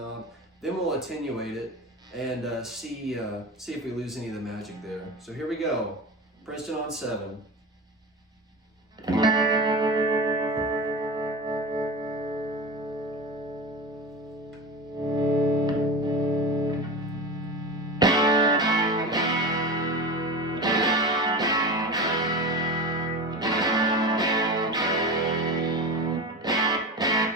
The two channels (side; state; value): both; normal; correlation 0.28